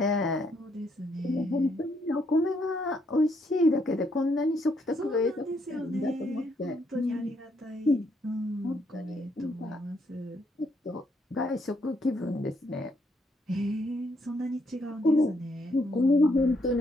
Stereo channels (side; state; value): both; normal; correlation 0.73